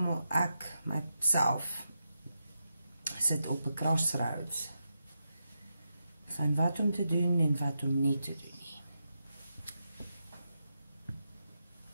ek, myself, sit op 'n crossroads van wat om te doen en wat om nie te doen nie.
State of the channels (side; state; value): both; inverted; correlation -0.86